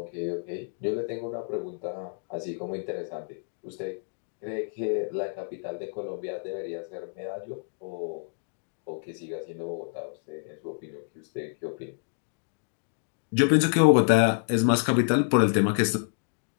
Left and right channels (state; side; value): silent; right; digital silence